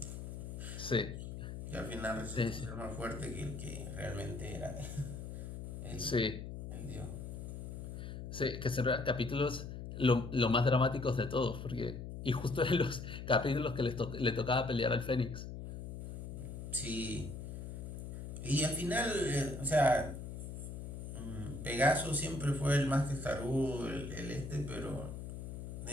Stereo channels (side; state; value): left; noise; hum, 8 dB below the sound